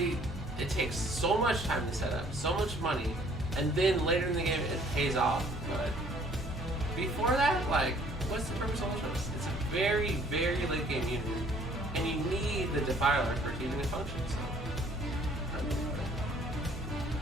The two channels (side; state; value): both; normal; correlation 0.58